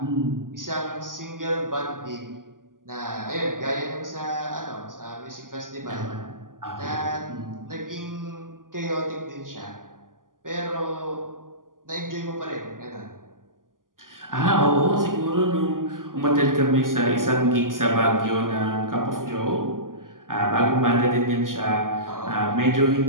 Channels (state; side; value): late; left; 0.90 ms